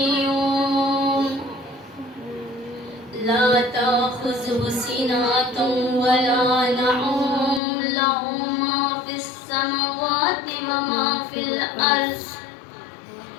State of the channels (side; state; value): right; drops out; at 7.6 s